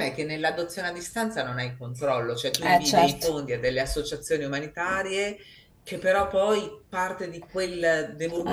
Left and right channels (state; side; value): identical; both; correlation 1.00